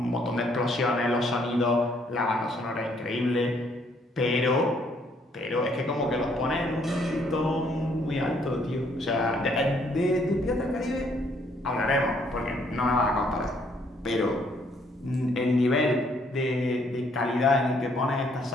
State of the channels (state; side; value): normal; both; correlation 0.67